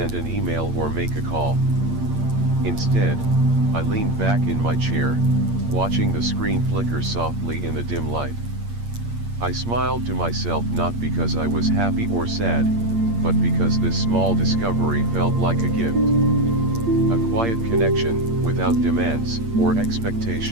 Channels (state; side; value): late; left; 8.6 ms